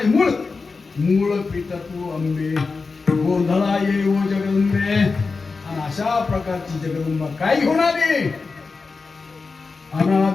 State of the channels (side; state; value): right; quieter; 4.3 dB